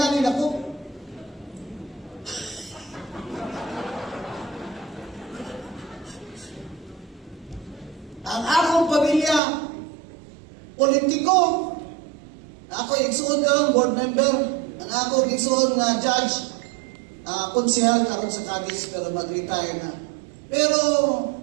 ako. Ang akong pamilya, politiko, ako igsuon ka board member, ang ako igsuon nga judge, konsehal karon sa Cadiz pero mag-retire na. Pero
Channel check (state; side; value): drops out; left; at 9.4 s